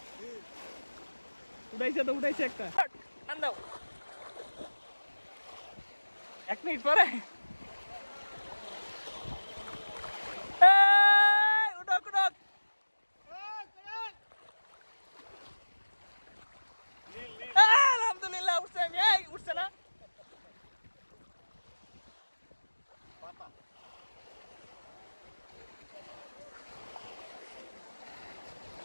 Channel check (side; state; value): both; inverted; correlation -1.00